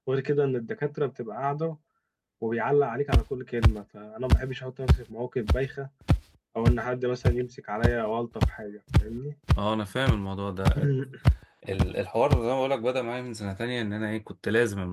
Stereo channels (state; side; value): identical; both; correlation 1.00